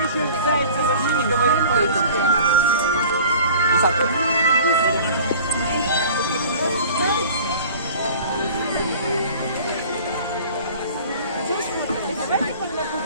зайца вообще не говорит по-русски.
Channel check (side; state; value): both; inverted; correlation -0.45